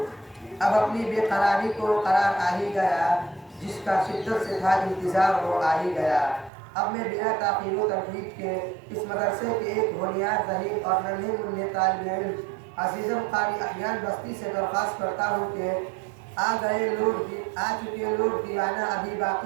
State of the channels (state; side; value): drops out; left; at 6.5 s